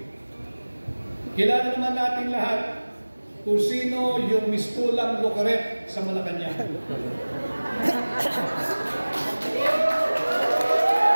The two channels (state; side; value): inverted; both; correlation -1.00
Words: Kilala naman natin lahat kung sino yung mistulang Locaret sa Malacanang.